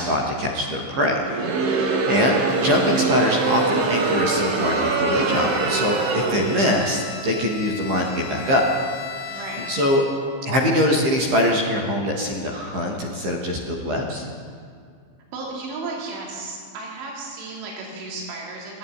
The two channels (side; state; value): left; late; 15 ms